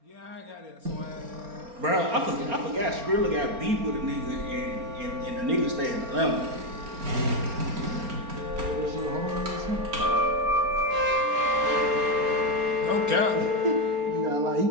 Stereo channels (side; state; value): left; late; 4.3 ms